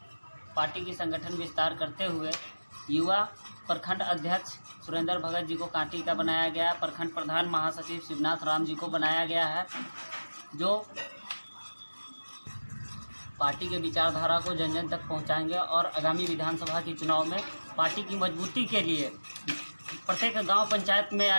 की संगठन विस्तार करते हुए युवा प्रखंड अध्यक्ष सुरेंद्र भगत जी को कांटी का बनाया गया, प्रखंड प्रधान महासचिव शिवनाथ राम जी को बनाया गया है, जो पार्टी के विचारधारा को जन जन तक पहुंचाएंगे और आगामी विधानसभा के चुनाव में पार्टी की मजबूती के लिए प्रत्येक गांव पंचायत में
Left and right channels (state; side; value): inverted; both; correlation -1.00